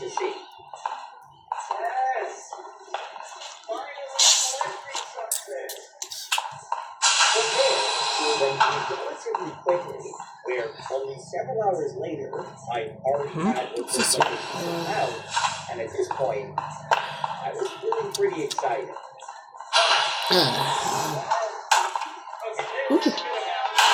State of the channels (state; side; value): identical; both; correlation 1.00